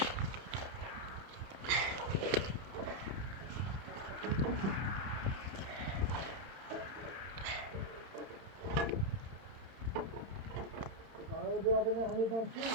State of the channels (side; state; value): left; late; 31 ms